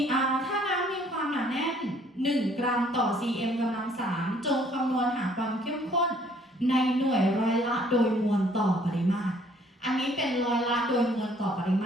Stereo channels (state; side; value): normal; both; correlation 0.61